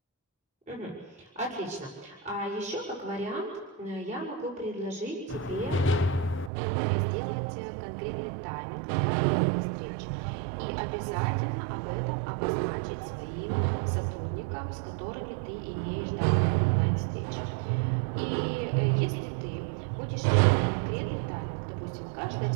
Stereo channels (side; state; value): left; drops out; at 6.5 s